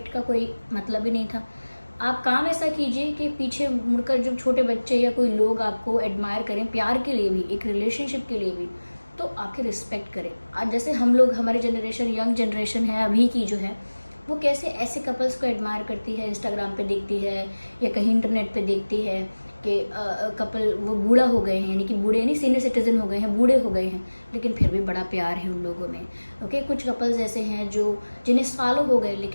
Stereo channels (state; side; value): inverted; both; correlation -1.00